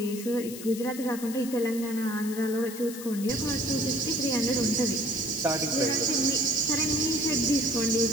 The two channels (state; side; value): noise; left; hiss, 12 dB below the sound